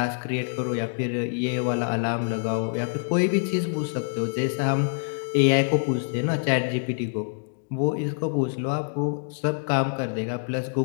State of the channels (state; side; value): silent; right; digital silence